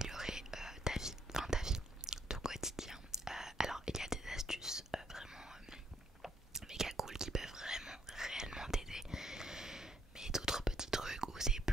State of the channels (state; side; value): normal; both; correlation 0.70